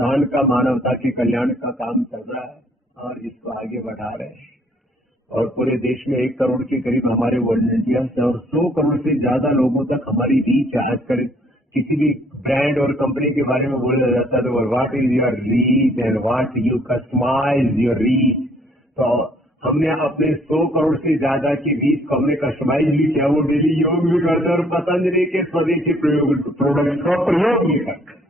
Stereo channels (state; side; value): normal; both; correlation 0.62